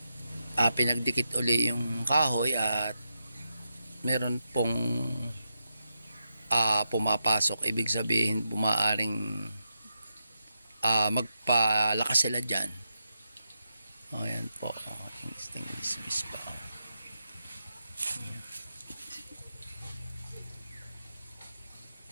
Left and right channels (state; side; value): inverted; both; correlation -0.86